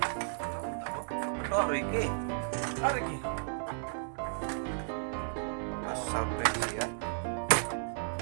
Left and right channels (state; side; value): silent; left; digital silence